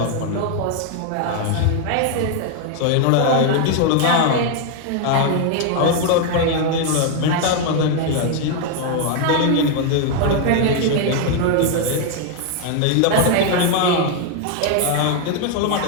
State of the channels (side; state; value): both; different; correlation 0.00